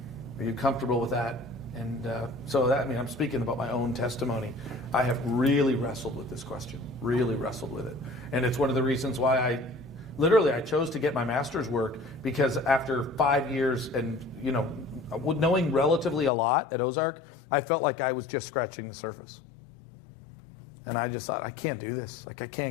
Are you comfortable with that? And I'm speaking about my own testimony. I have really wrestled with this question, really wrestled with it. And it's one of the reasons why I chose to get my master's work, because after 5 years and, knowing relatively a lot at Ozark, I felt like I was just scratching the surface. And I just thought, I can't do this. Like I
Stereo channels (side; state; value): right; drops out; at 16.3 s